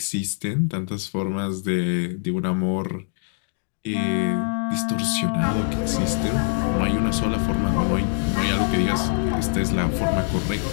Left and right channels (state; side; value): silent; right; 63 dB below the other